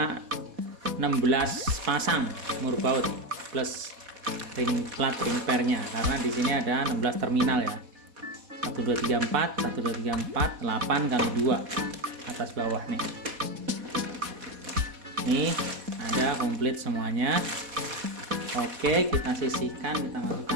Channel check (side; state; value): left; late; 4.1 ms